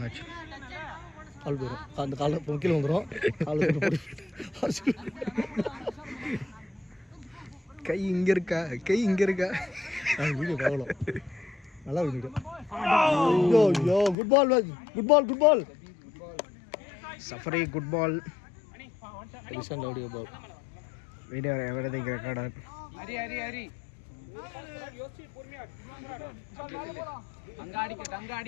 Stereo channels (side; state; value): right; drops out; at 14.2 s